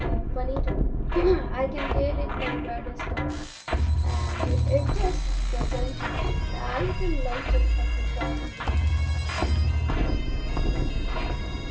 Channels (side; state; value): both; identical; correlation 1.00